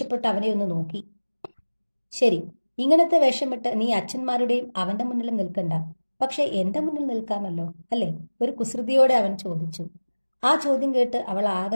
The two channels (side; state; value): both; inverted; correlation -1.00